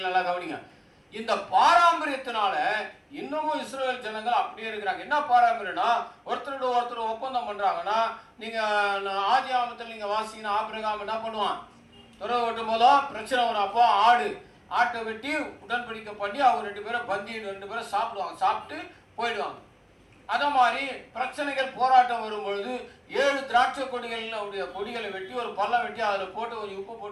நல்லா கவனிங்க. இந்த பாரம்பரியத்தினால இன்னமும் இஸ்ரவேல் ஜனங்கள் அப்படியே இருக்கிறாங்க. என்ன பாரம்பரியம்னா, ஒருத்தரோட ஒருத்தர் ஒப்பந்தம் பண்றாங்கன்னா, நீங்க ஆதி ஆமத்தில் நீங்க வாசிங்கன்னா ஆபிரகாம் என்ன பண்ணுவான், துறவு வெட்டும் போதும் பிரச்சனை வரும். அப்போ ஆட்டை வெட்டி உடன்படிக்கை பண்ணி அவங்க 2 பேரும் பந்தி 2 பேரும் சாப்பிடுவாங்க, சாப்பிட்டு போயிடுவாங்க. அத மாதிரி பிரச்சனைகள் போராட்டம் வரும் பொழுது 7 திராட்சை கொடிகளை வெட்டி ஒரு பள்ளம் வெட்டி அதில் போட்டு கொஞ்சம் உப்பு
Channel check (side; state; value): both; identical; correlation 1.00